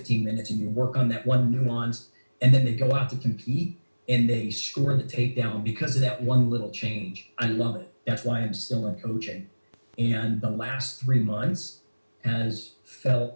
minutes and you work on that one nuance, and then they go out to compete and they score the takedown because of that one little change. I love it. That's why I'm still in coaching. And the last 3 months has felt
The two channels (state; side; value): inverted; both; correlation -1.00